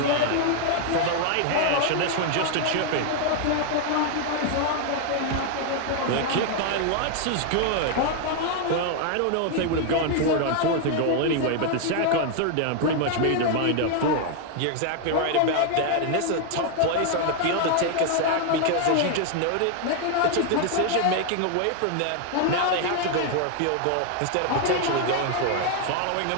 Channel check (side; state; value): both; different; correlation 0.00